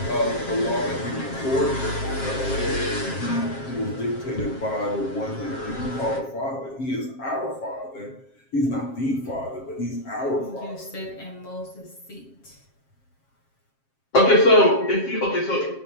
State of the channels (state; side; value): late; right; 7.5 ms